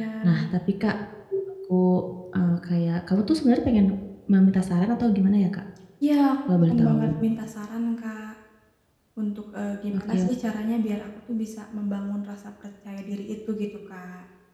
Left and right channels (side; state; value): both; identical; correlation 1.00